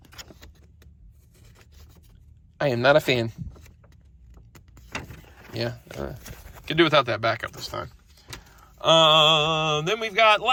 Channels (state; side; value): identical; both; correlation 1.00